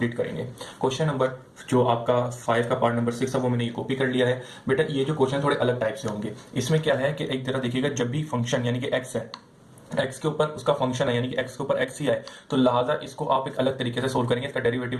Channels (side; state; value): both; identical; correlation 1.00